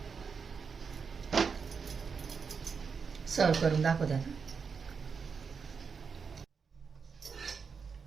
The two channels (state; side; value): quieter; left; 5.7 dB